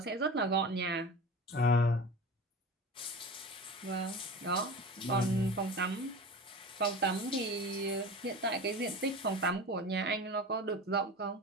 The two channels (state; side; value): normal; both; correlation 0.32